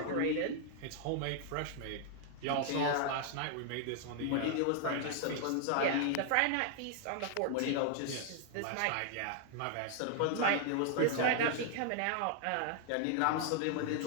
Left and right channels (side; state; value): both; different; correlation 0.00